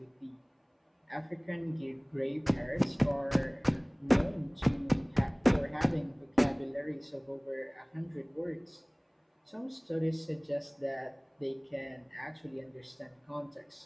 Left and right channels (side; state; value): both; identical; correlation 1.00